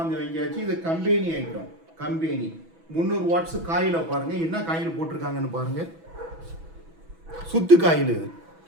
வாங்கியாச்சு. இது கம்பெனி ஐட்டம், 300 வாட்ஸ். காயில பாருங்க, என்ன காயில் போட்டிருக்காங்கன்னு பாருங்க, சுத்து காயில்.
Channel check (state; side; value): late; left; 6.1 ms